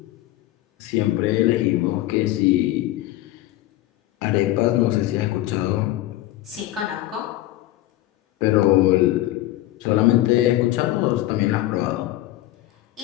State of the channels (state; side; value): quieter; right; 15.7 dB